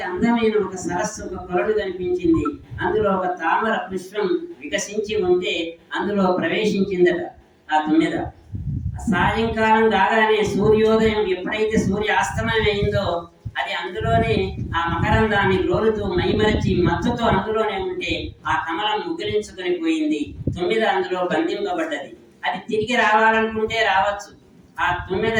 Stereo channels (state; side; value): identical; both; correlation 1.00